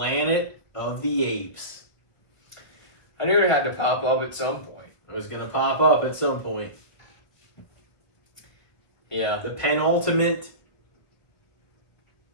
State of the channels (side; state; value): right; late; 1.2 ms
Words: of the Apes. I knew it had to pop up at some point. It was going to pop up at some point. Yeah. The penultimate